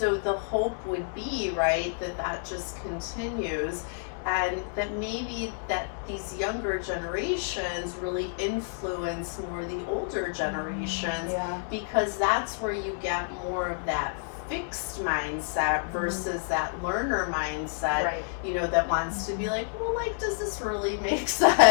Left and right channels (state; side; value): silent; right; digital silence